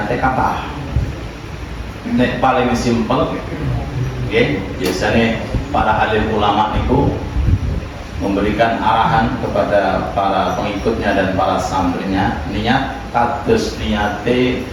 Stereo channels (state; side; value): identical; both; correlation 1.00